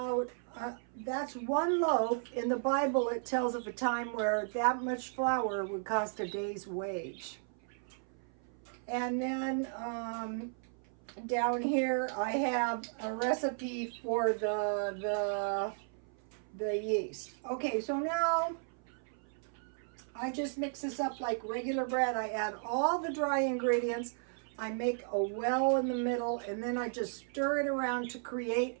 that's 1 loaf. In the Bible, it tells of a time where that much flour would cost a day's wage. And then down here, I have a recipe for the yeast. Okay, so now I just mix this up like regular bread. I add all the dry ingredients. I make a well in the middle, and then I just stir it around to create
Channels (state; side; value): silent; left; 55 dB below the other